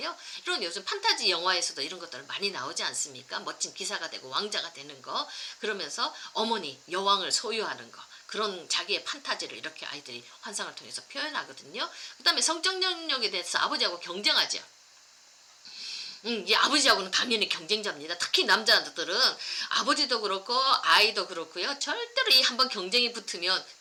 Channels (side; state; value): both; identical; correlation 1.00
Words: 이런 요즘 판타지 영화에서도 이런 것들 많이 나오지 않습니까? 멋진 기사가 되고 왕자가 되는 거, 그러면서 어머니, 여왕을 소유하는 거, 그런 자기의 판타지를 이렇게 아이들이 환상을 통해서 표현하거든요. 그 다음에 성적 능력에 대해서 아버지하고 경쟁하죠. 이 아버지하고는 당연히 경쟁자입니다. 특히 남자들은 아버지도 그렇고 아이도 그렇고요. 절대로 이 한번 경쟁이 붙으면